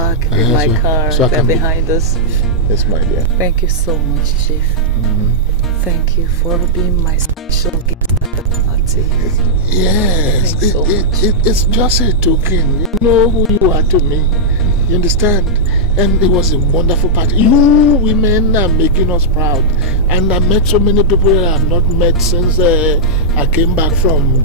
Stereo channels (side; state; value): both; normal; correlation -0.08